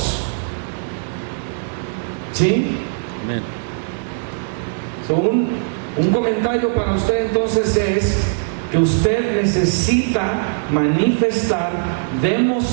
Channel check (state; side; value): silent; left; digital silence